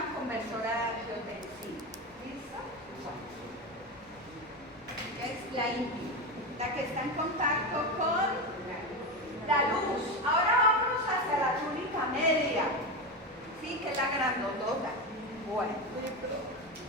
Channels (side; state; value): both; normal; correlation 0.17